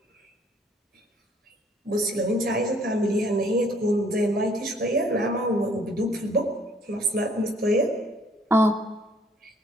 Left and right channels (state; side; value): normal; both; correlation 0.61